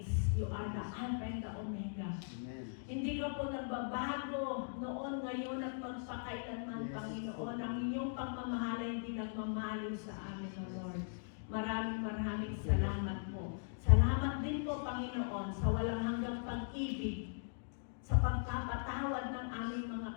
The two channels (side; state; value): right; silent; digital silence